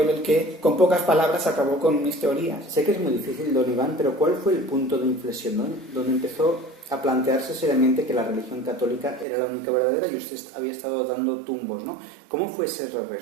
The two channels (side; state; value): left; drops out; at 9.2 s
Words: él el que con pocas palabras acabó con mis teorías. Sé que es muy difícil, don Iván, pero ¿cuál fue el punto de inflexión, ¿no? Donde empezó a plantearse seriamente que la religión católica era la única verdadera y usted había estado dando tumbos, ¿no? ¿Cómo fue ese